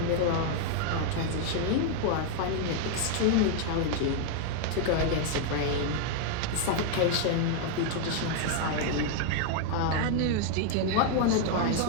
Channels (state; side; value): different; both; correlation 0.00